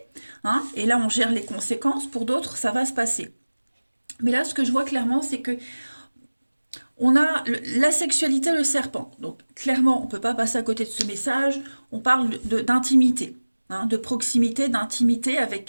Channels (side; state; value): both; inverted; correlation -1.00